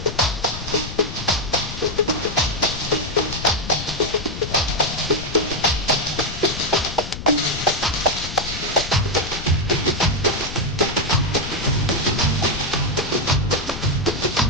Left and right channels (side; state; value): left; noise; rumble, 9 dB below the sound